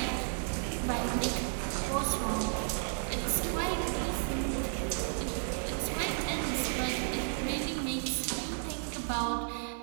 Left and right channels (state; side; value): silent; left; 56 dB below the other